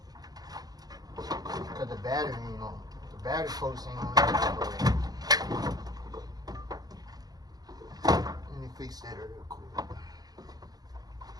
Cause the battery ain't on. The battery post ain't on. Let me fix that real quick.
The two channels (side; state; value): left; late; 0.19 ms